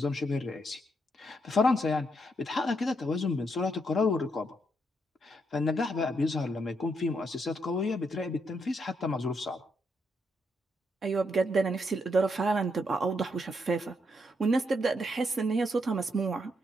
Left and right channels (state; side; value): normal; both; correlation 0.77